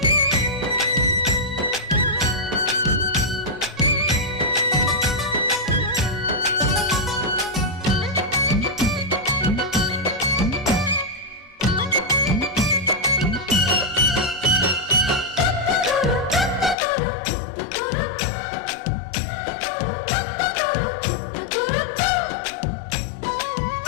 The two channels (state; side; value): drops out; right; at 16.8 s